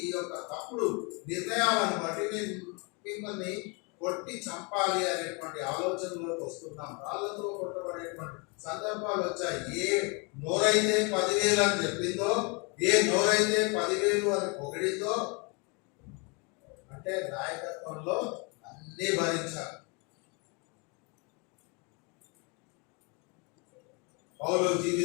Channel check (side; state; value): right; quieter; 32.0 dB